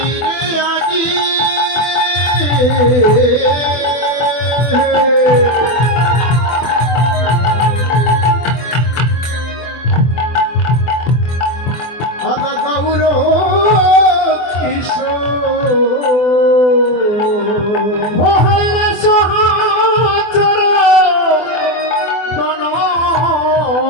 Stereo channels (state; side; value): late; right; 24 ms